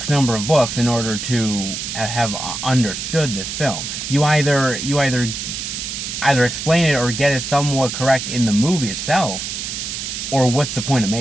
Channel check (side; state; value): right; noise; hiss, 5 dB below the sound